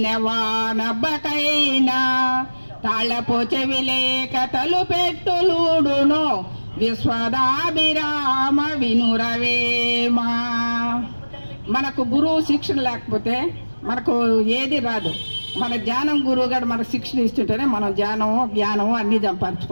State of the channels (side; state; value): both; inverted; correlation -1.00